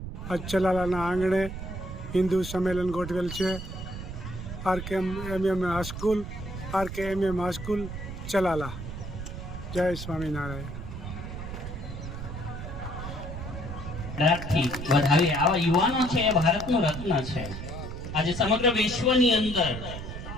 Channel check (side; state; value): right; noise; rumble, 8 dB below the sound